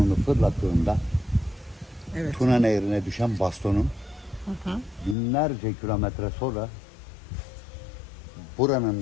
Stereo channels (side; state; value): right; drops out; at 5.2 s